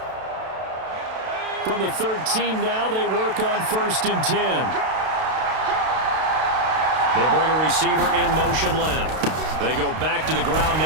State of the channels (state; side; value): late; left; 32 ms